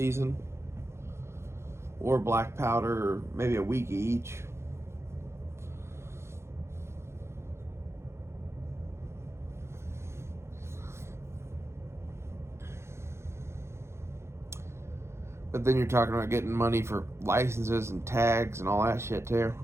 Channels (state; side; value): late; left; 0.13 ms